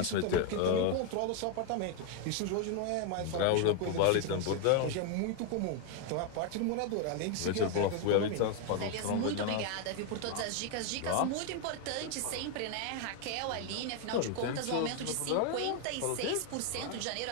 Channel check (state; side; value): different; both; correlation 0.01